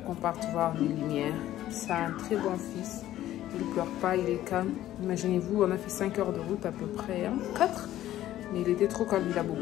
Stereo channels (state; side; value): quieter; right; 13.5 dB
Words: qu'on parte voir les lumières. C'est un très bon fils. Il ne pleure pas, il est calme. Imaginez-vous, on a fait 5 heures de route à peu près, hein, 4. Mais il était trop calme, il a